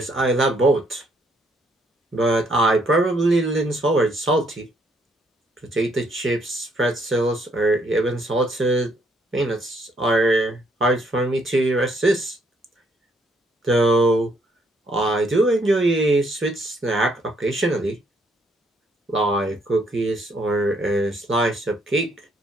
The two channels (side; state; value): both; normal; correlation 0.69